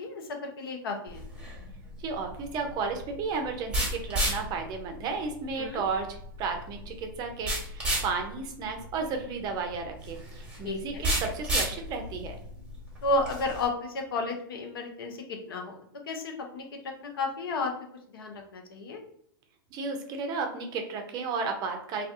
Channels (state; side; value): normal; both; correlation 0.10